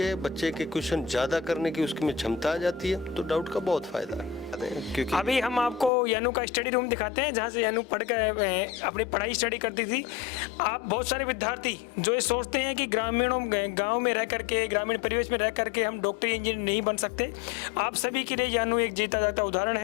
बच्चे के क्वेश्चन ज़्यादा करने की उसकी में क्षमता आ जाती है, तो डाउट का बहुत फ़ायदा है। क्योंकि अभी हम आपको यानू का स्टडी रूम दिखाते हैं, जहाँ से यानू पढ़ कर अपनी पढ़ाई स्टडी करती थी। आप बहुत सारे विद्यार्थी जो ये सोचते हैं कि गांव में रह करके, ग्रामीण परिवेश में रह करके हम डॉक्टर इंजीनियर नहीं बन सकते, आप सभी के लिए यानू एक जीता जाता उदाहरण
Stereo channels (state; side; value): drops out; right; at 5.9 s